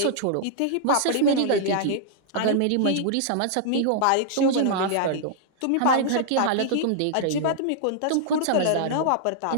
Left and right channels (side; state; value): both; different; correlation -0.01